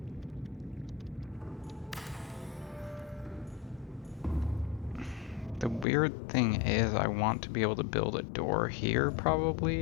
The weird thing is I want to be able to build a door here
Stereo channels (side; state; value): right; drops out; at 5.9 s